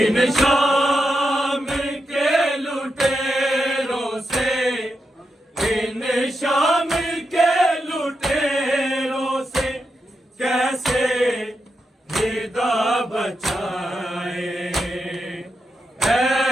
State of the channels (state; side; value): normal; both; correlation 0.86